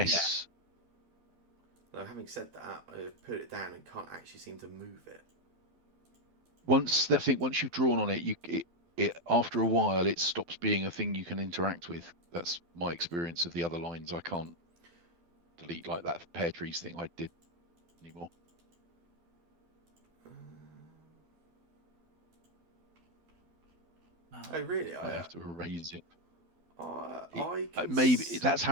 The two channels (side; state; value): left; late; 12 ms